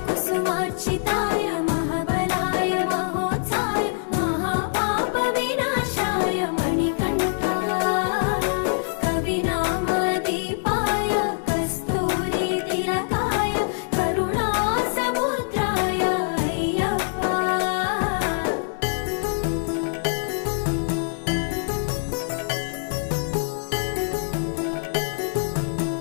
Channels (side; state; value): right; silent; digital silence